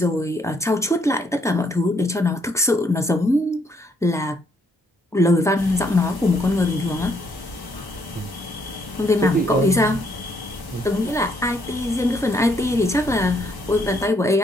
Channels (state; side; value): normal; both; correlation 0.71